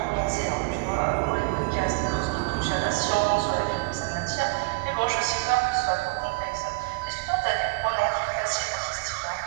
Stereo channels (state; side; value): quieter; left; 28.2 dB